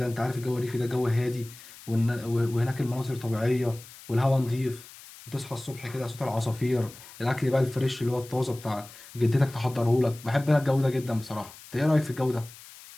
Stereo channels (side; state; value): left; noise; hiss, 18 dB below the sound